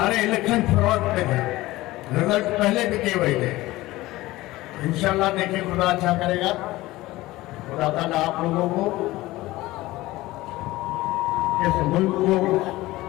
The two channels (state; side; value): quieter; right; 18.2 dB